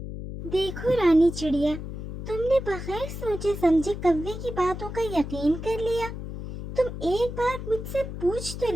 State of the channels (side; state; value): left; noise; hum, 8 dB below the sound